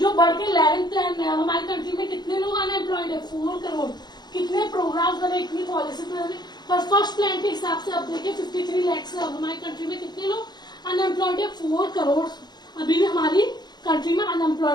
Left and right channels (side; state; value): right; late; 0.20 ms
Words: बढ़ के 11th प्लान में अब हमारी कंट्री में कितने लोग अनएम्प्लॉयड है, 4 करोड़। कितने प्रोग्राम बने, इतनी पॉलिसी बने, पर फर्स्ट प्लान के हिसाब से अब देखिए 53 लाख से अब हमारी कंट्री में कितने लोग अनएम्प्लॉयड है, 4 करोड़ अभी भी हमारी कंट्री में